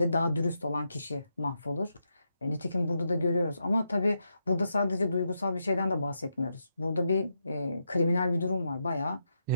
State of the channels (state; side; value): inverted; both; correlation -0.83